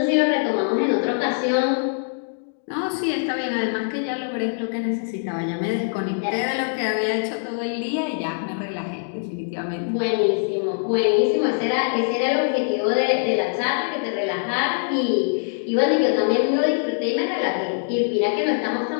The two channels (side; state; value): right; silent; digital silence